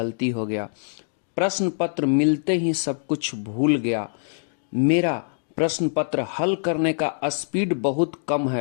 हो गया, प्रश्न पत्र मिलते ही सब कुछ भूल गया, मेरा प्रश्न पत्र हल करने का स्पीड बहुत कम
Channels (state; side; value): silent; right; digital silence